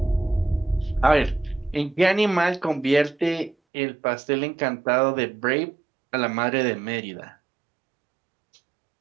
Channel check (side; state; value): left; drops out; at 3.6 s